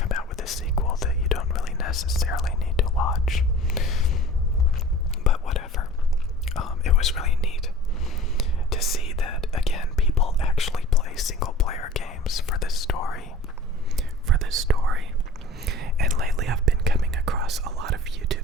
out with a sequel that you don't really necessarily need to watch. But whatever. It was really neat to see that, again, people actually play single-player games for the story. And lately I've been coming across a lot of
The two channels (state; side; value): normal; both; correlation 0.43